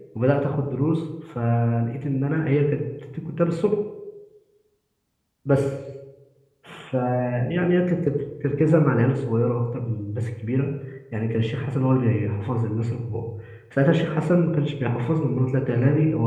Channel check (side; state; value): both; identical; correlation 1.00